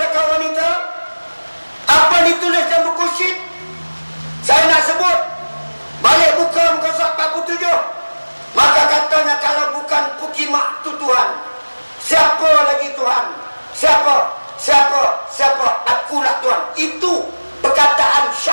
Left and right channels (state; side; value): inverted; both; correlation -1.00